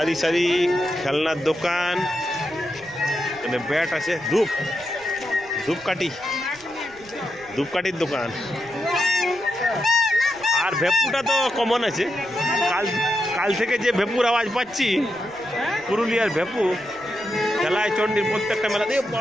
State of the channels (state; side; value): noise; right; rumble, 25 dB below the sound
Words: সারি খেলনার দোকান, এখানে ব্যাট আছে, ধূপকাঠির দোকান। আর ভেপুটা তো কমন আছে। কাল থেকে যে ভেপুর আওয়াজ পাচ্ছি, পুরুলিয়ার ভেপু খেলাচণ্ডীর প্রত্যেকটা মেলা দিয়ে